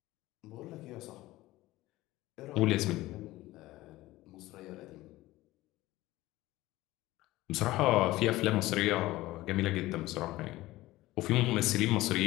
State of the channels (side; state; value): right; quieter; 17.7 dB